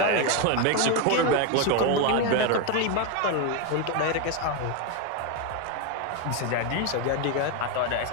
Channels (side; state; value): both; different; correlation 0.02